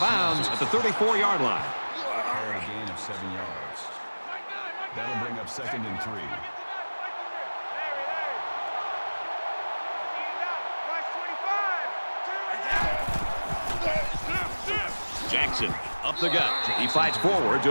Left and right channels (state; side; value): inverted; both; correlation -1.00